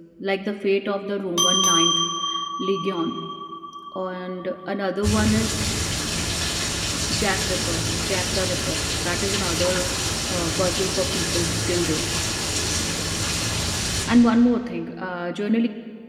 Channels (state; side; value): identical; both; correlation 1.00